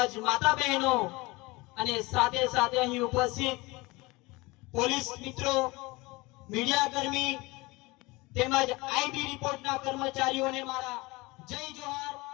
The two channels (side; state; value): right; quieter; 23.1 dB